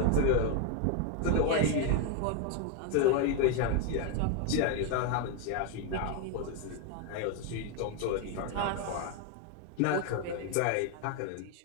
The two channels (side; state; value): both; different; correlation 0.01